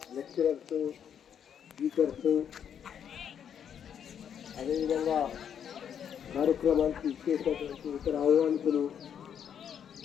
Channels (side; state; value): right; quieter; 8.5 dB